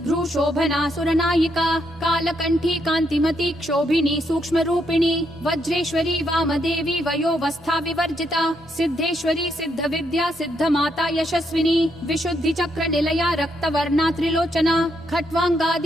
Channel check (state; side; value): normal; both; correlation 0.77